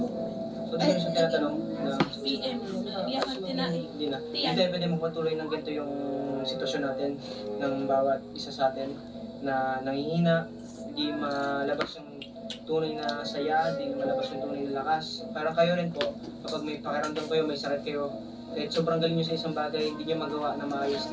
so di ko siya tinatanong na PM. Iyakan tinai. hindi na. Tiyan. Hindi pwede magpatuloy ng ganito yung sitwasyon natin ng bawat isa sa atin na nangihina, hindi malabas yung tunay na saya, hindi malabas yung tunay na lakas. Parang kayo rin po, kapag may pakiramdam kayo, may sakit kayo, kahit sobrang galing nyo sa isang bagay, hindi nyo magawa na maayos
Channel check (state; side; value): identical; both; correlation 1.00